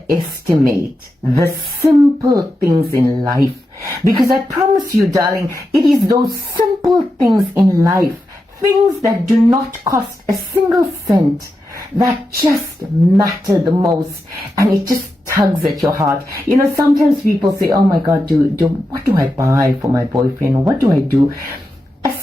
the simple things in life. Because I promise you, darling, it is those simple things in life, things that do not cost a single cent, that just matter the most, and it just tugs at your heart. You know, sometimes people say, oh my God, what do I buy for my boyfriend? Or what do I do? A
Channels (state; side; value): normal; both; correlation 0.89